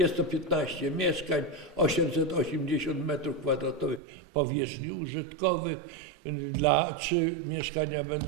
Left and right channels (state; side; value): drops out; left; at 4.0 s